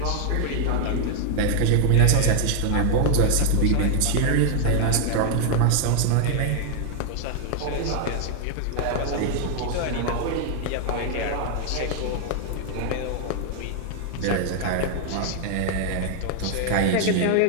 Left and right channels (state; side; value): different; both; correlation 0.00